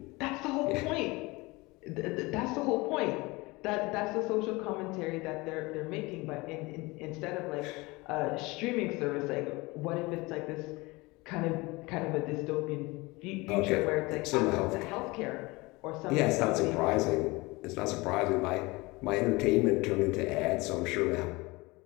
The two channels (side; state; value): right; quieter; 23.4 dB